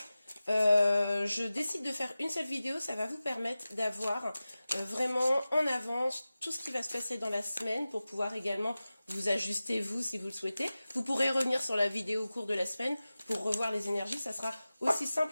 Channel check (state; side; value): inverted; both; correlation -0.96